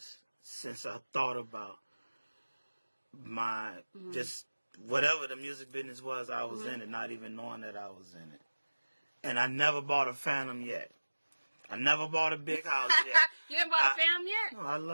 since I thought about my just whatever the music business was, I was in it, not even knowing that I was in it. And I never bought a Phantom yet. I never bought a big house yet. You haven't bought a Phantom yet? No,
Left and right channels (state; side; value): inverted; both; correlation -1.00